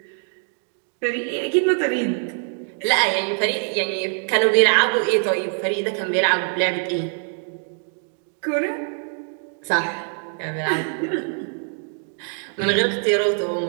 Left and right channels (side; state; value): left; silent; 58 dB below the other